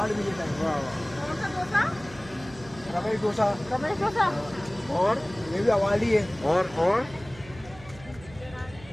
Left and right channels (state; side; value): noise; right; hum, 19 dB below the sound